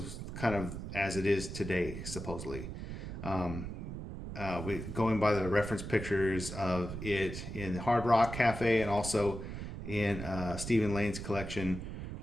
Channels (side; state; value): right; noise; rumble, 7 dB below the sound